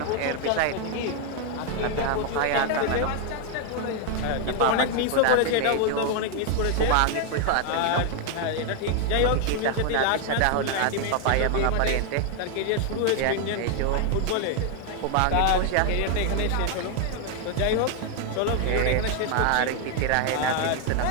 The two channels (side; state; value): both; different; correlation 0.00